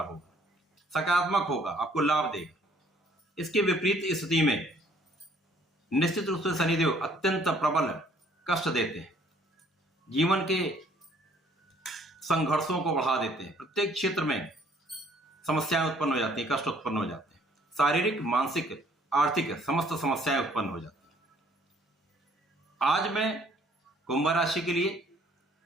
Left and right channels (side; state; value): both; normal; correlation 0.61